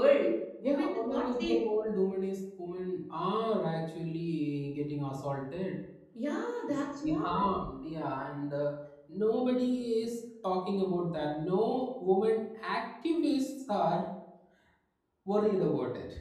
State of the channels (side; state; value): both; identical; correlation 1.00